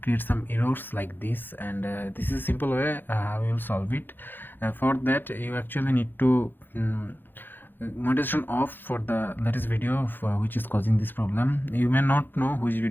create some errors like this. And this is a simple way how you will solve it. For that, you actually need to monetization off for the latest video which is causing this problem. You may not know which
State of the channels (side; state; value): right; late; 0.095 ms